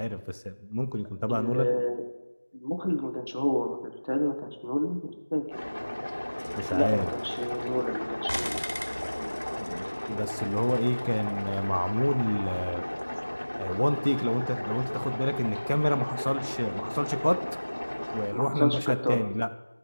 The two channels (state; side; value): inverted; both; correlation -1.00